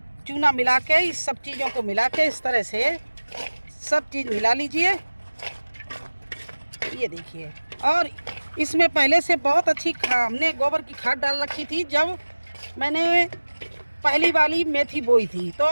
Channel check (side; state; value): both; inverted; correlation -1.00